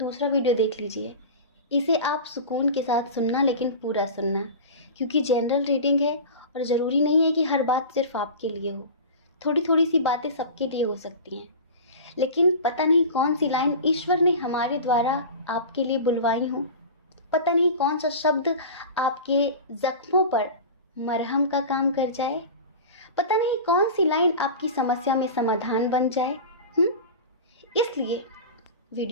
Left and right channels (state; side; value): inverted; both; correlation -0.31